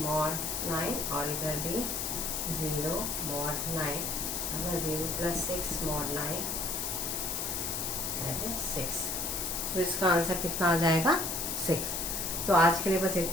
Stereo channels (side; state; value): left; noise; hiss, 2 dB below the sound